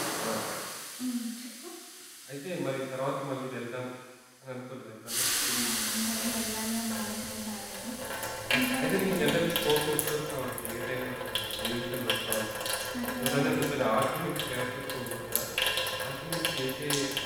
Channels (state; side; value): identical; both; correlation 1.00